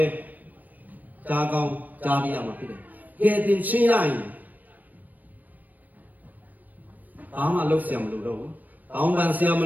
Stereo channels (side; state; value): left; late; 0.083 ms